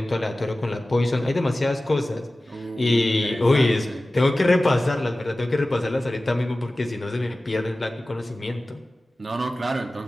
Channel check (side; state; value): both; normal; correlation 0.96